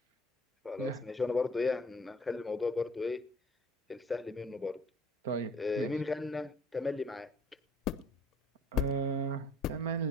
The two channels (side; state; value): both; normal; correlation 0.54